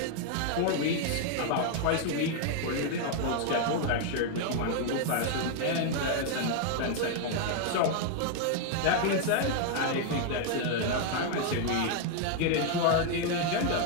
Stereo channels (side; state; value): both; different; correlation 0.00